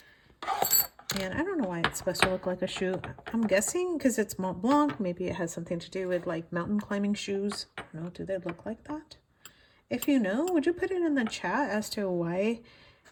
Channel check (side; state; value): both; identical; correlation 1.00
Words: And I don't know why it's supposed to look like a shoe. I'm guessing because it's Mont Blanc, maybe it has something to do with like mountain climbing shoes. I don't know, do they look like that? If you know, would you put it in the chat as to why